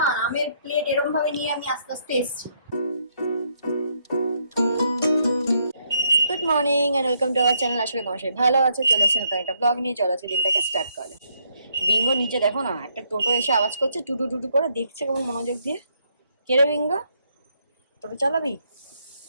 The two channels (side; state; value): both; inverted; correlation -0.74